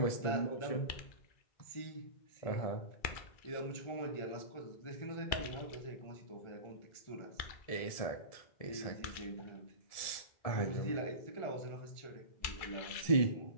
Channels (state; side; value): late; right; 1.7 ms